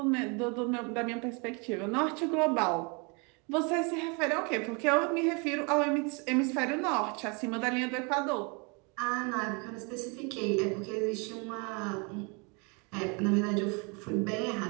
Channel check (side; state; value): left; quieter; 32.4 dB